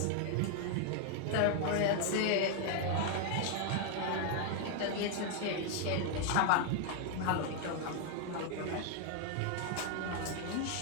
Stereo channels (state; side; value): different; both; correlation 0.00